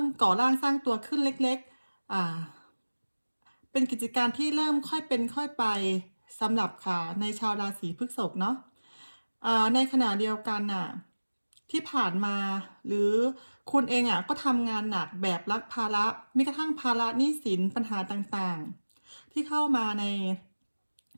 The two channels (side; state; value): both; inverted; correlation -1.00